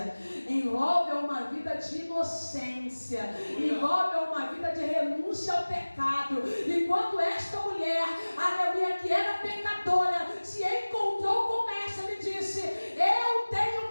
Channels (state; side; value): inverted; both; correlation -1.00